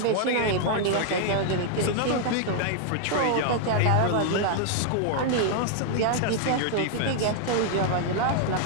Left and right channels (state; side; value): different; both; correlation 0.00